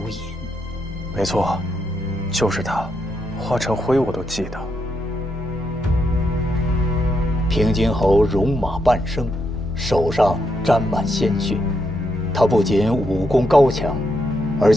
隐。没错，就是他。化成灰我都记得。平津侯戎马半生，手上沾满鲜血。他不仅武功高强，而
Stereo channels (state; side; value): normal; both; correlation 0.80